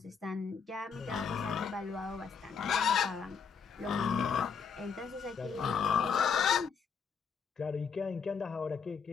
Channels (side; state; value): right; quieter; 6.2 dB